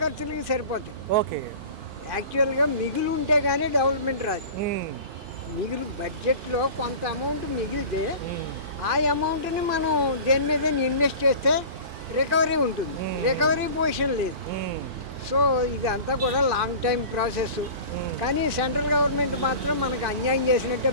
ఖర్చులకి సరిపోతాయి. ఓకే. యాక్చువల్గా మిగులు ఉంటే కానీ డెవలప్మెంట్ రాదు. ఉమ్, మిగులు బడ్జెట్లో కొంత అమౌంట్ మిగిలితే ఉమ్, ఆ అమౌంట్ని మనం దేని మీద ఇన్వెస్ట్ చేస్తే రికవరీ ఉంటుంది. రికవరీ పొజిషన్ లేదు. ఉమ్, సో ఇదంతా కూడా లాంగ్ టైం ప్రాసెస్. ఉమ్. కానీ సెంట్రల్ గవర్నమెంట్ మాత్రం మనకు అన్యాయం చేసినట్టే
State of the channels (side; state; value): left; late; 4.5 ms